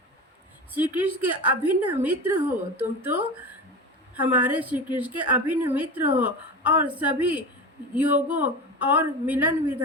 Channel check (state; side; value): normal; both; correlation 0.28